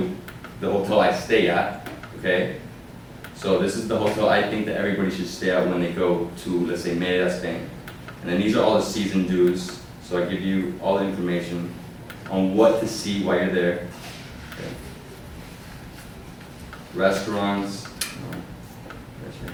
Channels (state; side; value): identical; both; correlation 1.00